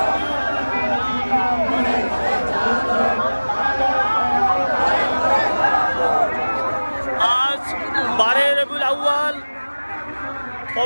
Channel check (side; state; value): both; inverted; correlation -1.00